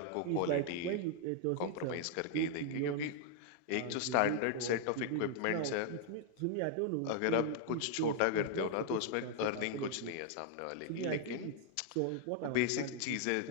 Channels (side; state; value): both; different; correlation 0.00